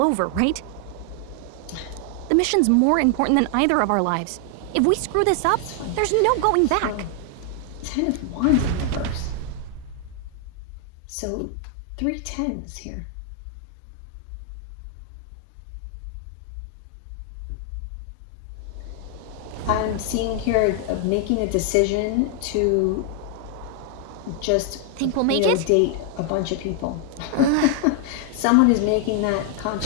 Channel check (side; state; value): both; different; correlation 0.00